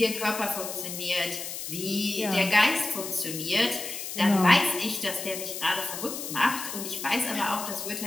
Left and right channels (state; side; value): noise; left; hiss, 7 dB below the sound